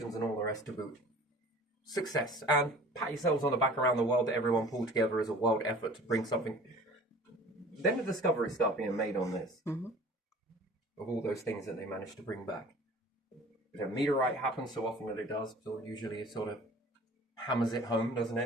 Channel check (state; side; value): normal; both; correlation 0.46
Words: and all the rest to boot. Success. And pat yourselves on the back around the world that everyone pulled together as a world effort to bring something. Then the discoveries start being made on this. Of all those things that they managed to bring back. If a meteorite happens so often that it does, so usually it sort of hammers it home, doesn't